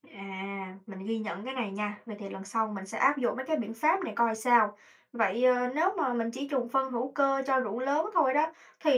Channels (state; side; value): identical; both; correlation 1.00